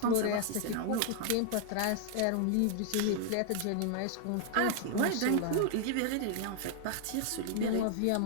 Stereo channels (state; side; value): different; both; correlation 0.00